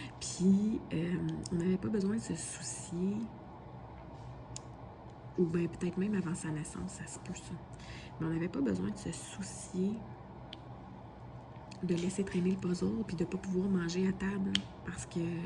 Puis on n'avait pas besoin de se soucier, ou bien peut-être même avant sa naissance, ça se peut ça. Mais on n'avait pas besoin de se soucier de laisser traîner le puzzle puis de ne pas pouvoir manger à table. Parce que,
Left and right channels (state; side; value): identical; both; correlation 1.00